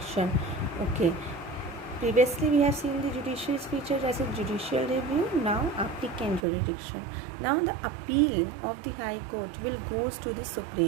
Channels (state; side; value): drops out; left; at 6.5 s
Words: Okay, previously we have seen the judicial feature as a judicial review, now applicant jurisdiction. Now the appeal of the High Court will goes to the